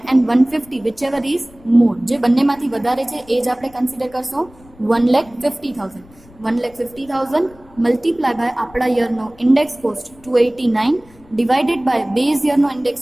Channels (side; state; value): left; noise; rumble, 25 dB below the sound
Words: and 150 which ever is more, જે બંનેમાંથી વધારે છે એ જ આપણે કન્સિડર કરશું 1,50,000. 1,50,000 મલ્ટીપ્લાય બાય આપણા યરનો index cost 289 divided by base યરનો ઇન્ડેક્સ